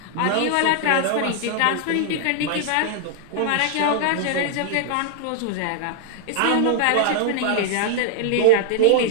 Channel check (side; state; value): both; different; correlation -0.01